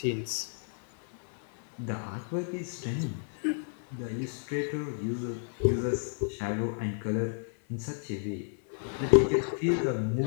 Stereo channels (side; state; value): right; silent; 57 dB below the other